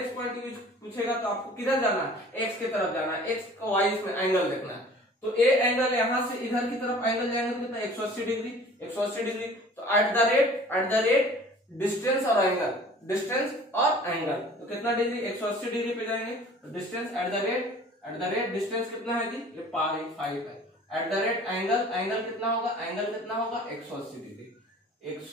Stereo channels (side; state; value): both; normal; correlation 0.48